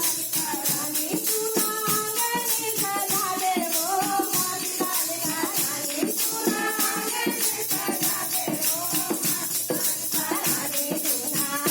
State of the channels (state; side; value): identical; both; correlation 1.00